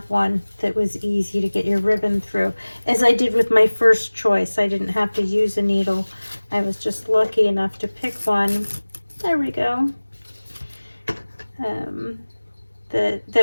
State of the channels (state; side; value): inverted; both; correlation -1.00